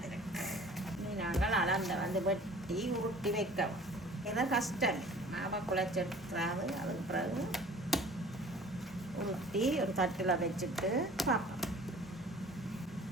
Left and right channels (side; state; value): both; normal; correlation 0.47